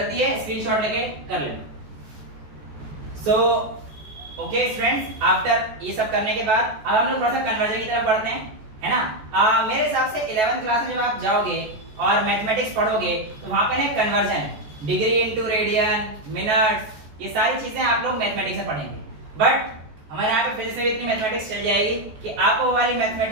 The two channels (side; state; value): left; late; 14 ms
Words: है, स्क्रीनशॉट लेके कर लेना। सो ओके स्टूडेंट्स, आफ्टर ये सब करने के बाद अब हम लोग थोड़ा सा कन्वर्जन की तरफ बढ़ते हैं, है ना। मेरे हिसाब से 11th क्लास में जब आप जाओगे और मैथमेटिक्स पढ़ोगे तो वहां पे ना conversion, degree into radian, minutes, ये सारी चीजें आप लोग मैथमेटिक्स में पढ़ेंगे। बट हमारे यहाँ पे फिजिक्स में इतनी मैथमेटिक्स चल जाएगी कि आपको वो वाली